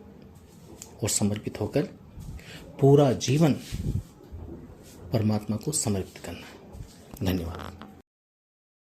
और समर्पित होकर पूरा जीवन परमात्मा को समर्पित करना है। धन्यवाद।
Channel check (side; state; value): both; identical; correlation 1.00